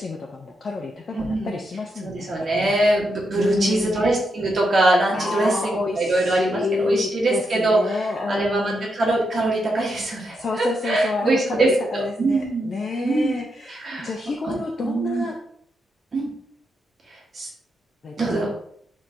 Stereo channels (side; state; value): both; normal; correlation 0.82